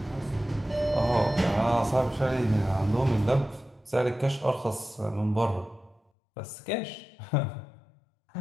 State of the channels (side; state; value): right; drops out; at 6.0 s